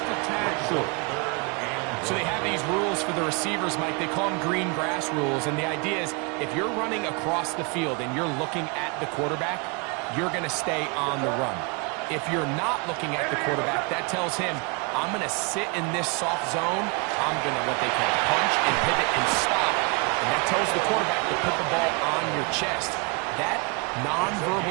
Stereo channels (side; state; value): left; quieter; 32.0 dB